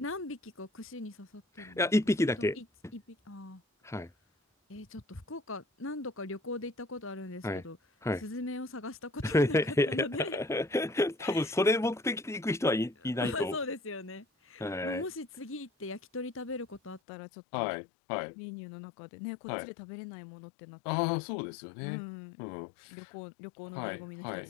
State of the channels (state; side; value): drops out; right; at 17.0 s